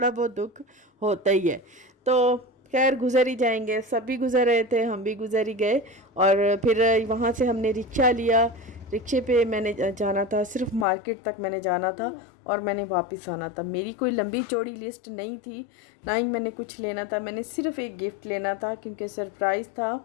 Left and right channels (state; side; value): drops out; right; at 10.9 s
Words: बहुत दुख होता ही है। तो खैर गुज़र ही जाएंगे। सभी गुज़र रहे थे, हम भी गुज़र ही गए। और फिर वहाँ से हमने रिक्शा लिया। रिक्शे पे मैंने जाना था, सिर्फ मार्केट तक मैंने जाना था और मैंने वापस आना था। मेरी कोई लंबी चौड़ी लिस्ट नहीं थी, ना ही मैंने कुछ लेना था। मैंने सिर्फ एक गिफ्ट लेना था क्योंकि सरप्राइज़ था।